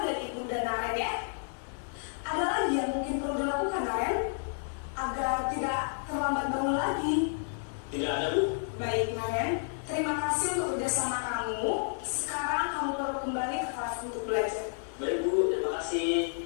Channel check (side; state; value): right; silent; digital silence